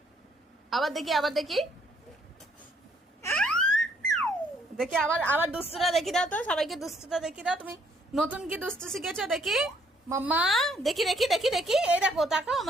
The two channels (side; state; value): both; normal; correlation 0.67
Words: আবার দেখি, আবার দেখি, দেখি আবার, আবার দুষ্টুটা দেখি দাও তো, সবাইকে দুষ্টুটা দেখি দাও। তুমি নতুন কি দুষ্টু শিখেছো দেখি মাম্মা, দেখি দেখি দেখি দেখি, এই দেখো, তাকাও